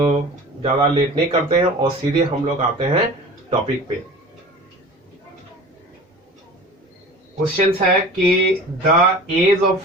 ज़्यादा लेट नहीं करते हैं और सीधे हम लोग आते हैं टॉपिक पे। क्वेश्चन है कि the age of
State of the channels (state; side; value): normal; both; correlation 0.40